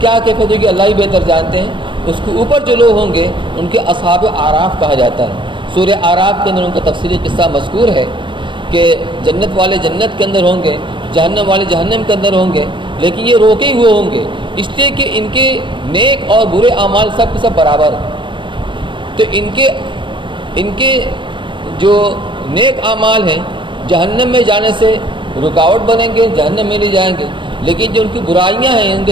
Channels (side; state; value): left; late; 0.24 ms